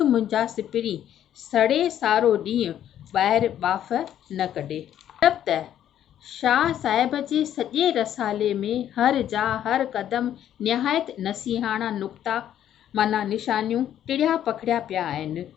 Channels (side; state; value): right; quieter; 10.8 dB